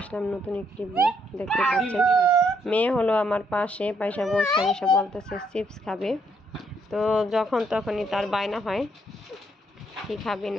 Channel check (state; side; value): normal; both; correlation 0.73